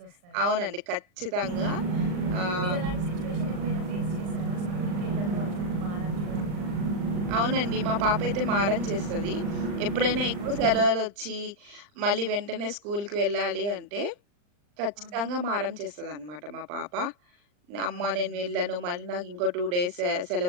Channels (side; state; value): left; late; 39 ms